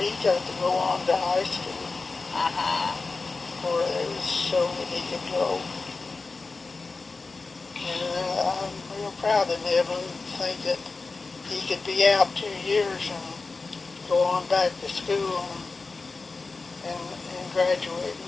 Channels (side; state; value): right; quieter; 4.0 dB